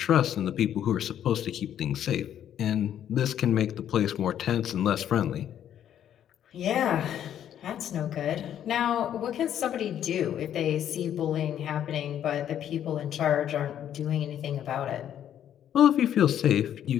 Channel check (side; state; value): right; quieter; 10.3 dB